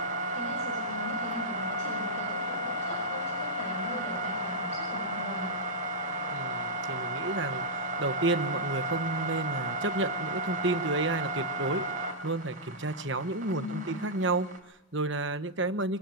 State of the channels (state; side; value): normal; both; correlation -0.09